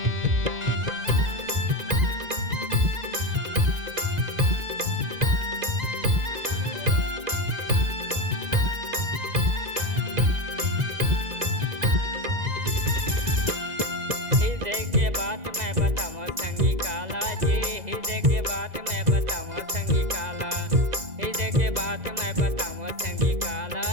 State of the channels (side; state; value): left; late; 2.0 ms